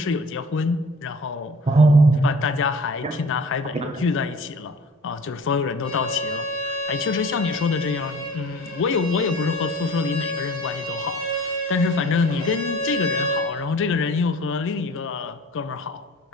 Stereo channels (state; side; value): normal; both; correlation 0.45